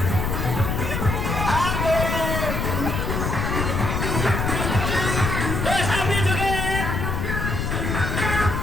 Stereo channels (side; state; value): left; noise; rumble, 1 dB below the sound